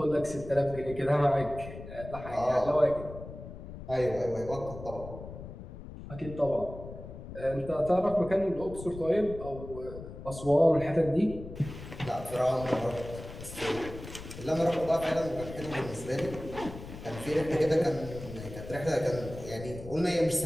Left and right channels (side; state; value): left; noise; rumble, 12 dB below the sound